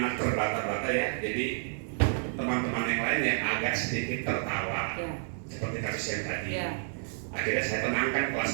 terbata-bata ya, jadi teman-teman yang lain yang agak sedikit tertawa seperti kasus yang tadi. Akhirnya saya tenangkan kelas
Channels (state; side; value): silent; left; 58 dB below the other